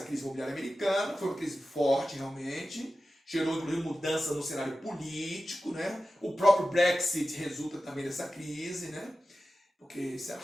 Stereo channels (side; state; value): both; normal; correlation 0.94